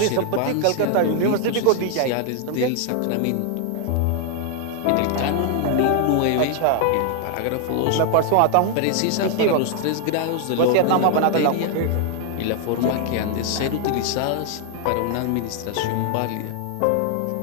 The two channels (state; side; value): different; both; correlation 0.00